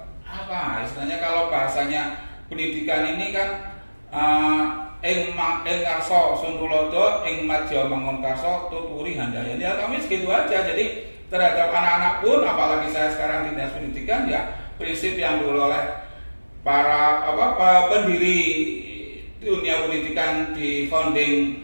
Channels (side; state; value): both; inverted; correlation -1.00